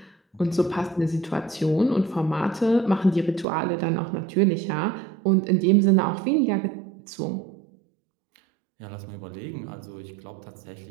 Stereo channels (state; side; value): drops out; left; at 3.5 s